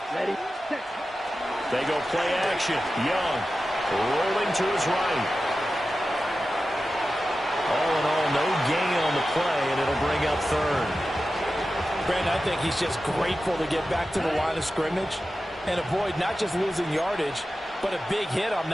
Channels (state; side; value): normal; both; correlation 0.93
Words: Ready, set. They go play action. Young rolling to his right. All in all, no gain on the play, and it'll bring up 3rd. Brandon, I think he's just grateful to get back to the line of scrimmage and avoid not just losing yardage, but a big hit on